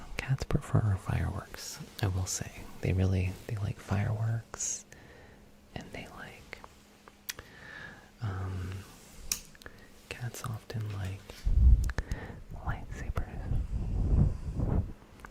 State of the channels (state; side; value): identical; both; correlation 1.00